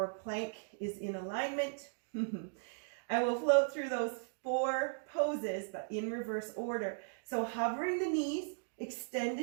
plank is in alignment. And we'll float through those 4 poses, but in reverse order. So hovering the knees,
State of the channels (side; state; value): left; silent; digital silence